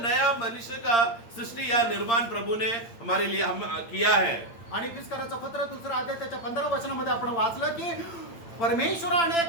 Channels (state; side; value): late; right; 8.8 ms